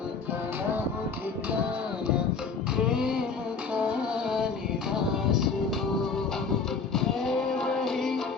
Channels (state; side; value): quieter; right; 5.0 dB